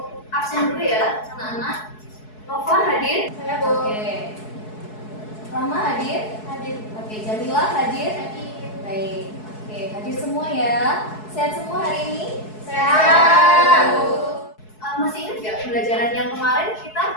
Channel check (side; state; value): right; late; 4.7 ms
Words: absen dulu ya anak-anak. Nova hadir? Saya, Bu. Oke. Rama hadir? Hadir. Oke, Jamila hadir? Baik. Oke, hadir semua ya. Sehat semua hari ini? Sehat. Masih ingat nggak pembelajaran yang kemarin kita